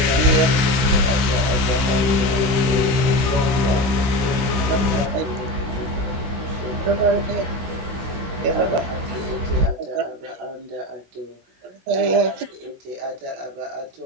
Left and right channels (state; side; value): late; left; 16 ms